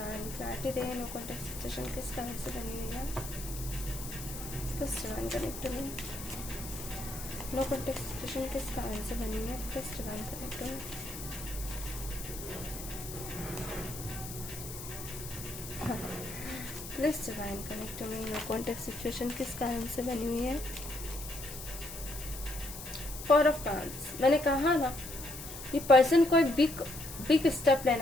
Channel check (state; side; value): noise; left; hiss, 10 dB below the sound